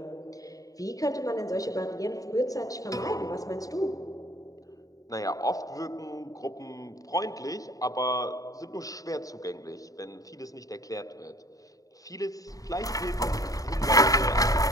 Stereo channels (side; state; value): right; late; 0.17 ms